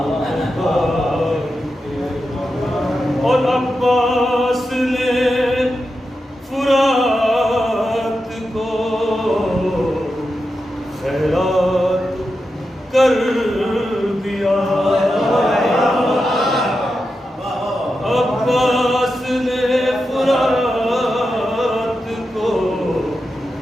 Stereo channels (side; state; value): both; normal; correlation 0.89